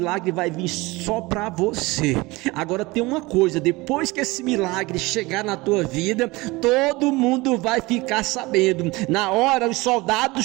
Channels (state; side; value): quieter; left; 22.3 dB